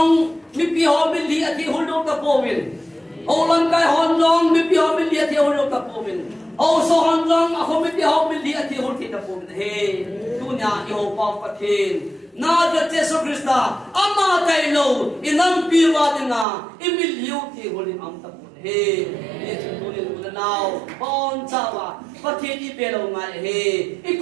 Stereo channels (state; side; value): drops out; left; at 16.4 s